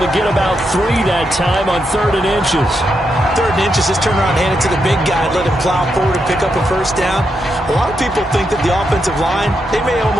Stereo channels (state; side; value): normal; both; correlation 0.83